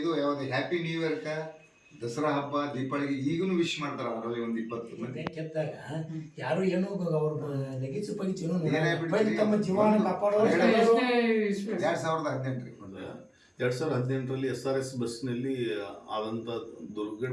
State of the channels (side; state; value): both; identical; correlation 1.00